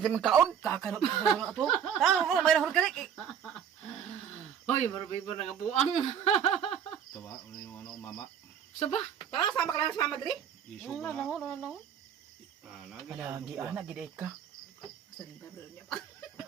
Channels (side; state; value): left; quieter; 8.5 dB